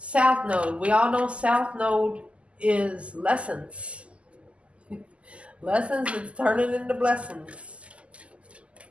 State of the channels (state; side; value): late; left; 0.058 ms